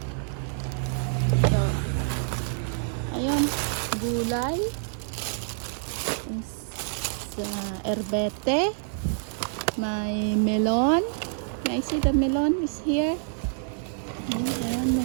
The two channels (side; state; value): left; silent; digital silence